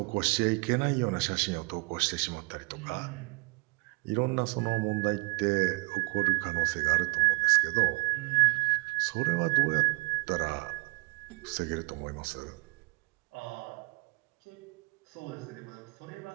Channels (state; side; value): quieter; left; 25.7 dB